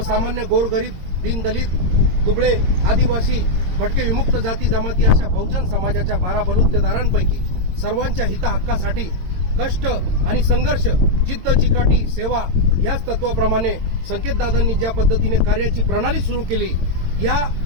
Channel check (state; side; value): late; left; 22 ms